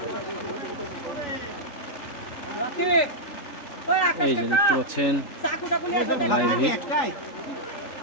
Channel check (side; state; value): right; late; 3.4 ms